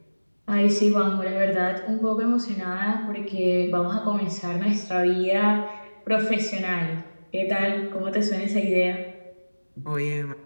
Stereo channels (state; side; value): inverted; both; correlation -1.00